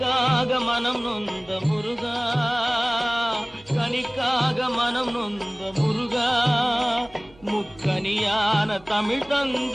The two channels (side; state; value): right; noise; hum, 26 dB below the sound